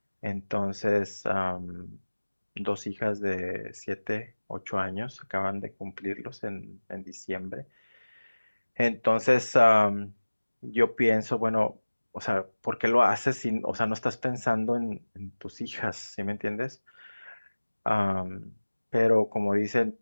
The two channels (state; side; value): inverted; both; correlation -1.00